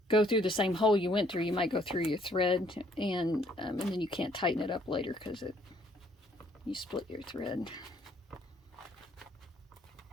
go through the same hole you went through, you might go through your thread, and then you can't tighten it up later because you split your thread.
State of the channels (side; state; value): both; normal; correlation 0.65